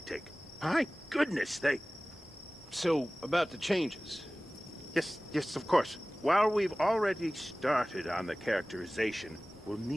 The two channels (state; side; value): normal; both; correlation 0.98